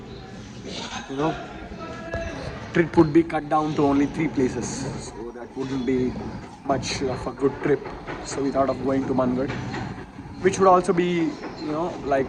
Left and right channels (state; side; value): identical; both; correlation 1.00